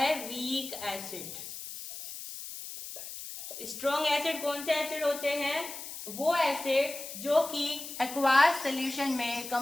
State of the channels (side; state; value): left; noise; hiss, 10 dB below the sound